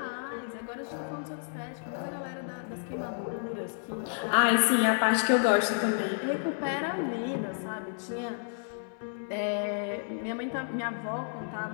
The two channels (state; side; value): silent; right; digital silence